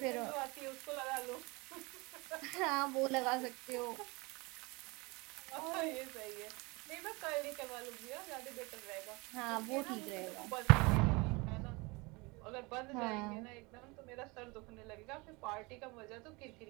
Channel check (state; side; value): quieter; left; 26.1 dB